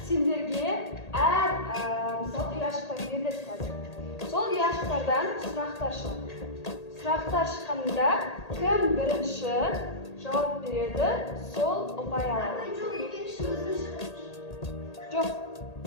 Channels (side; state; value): right; late; 1.8 ms